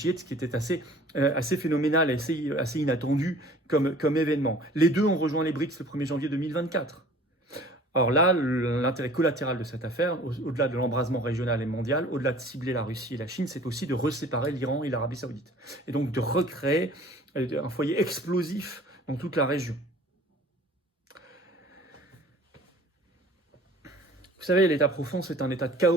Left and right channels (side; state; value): both; normal; correlation 0.49